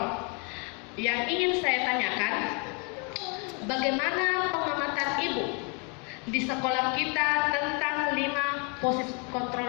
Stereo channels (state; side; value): quieter; right; 34.8 dB